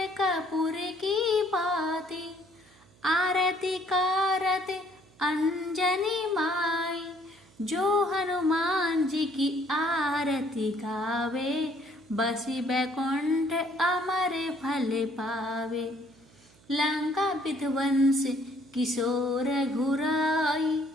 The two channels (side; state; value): right; noise; hum, 29 dB below the sound